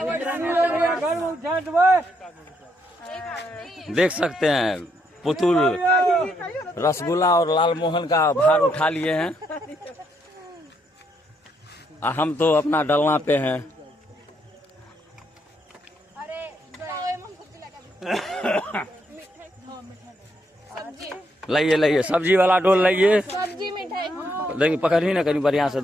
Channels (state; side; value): normal; both; correlation 0.75